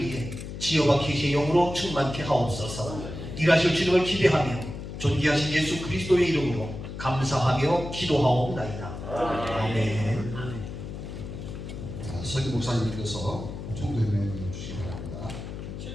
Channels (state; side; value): noise; left; hum, 9 dB below the sound